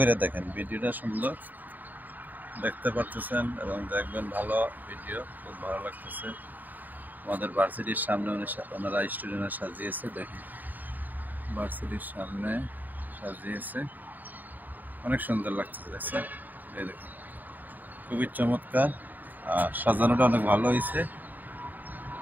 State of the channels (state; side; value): late; left; 0.086 ms